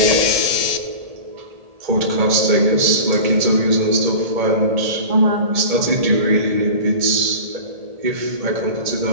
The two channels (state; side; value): late; left; 1.8 ms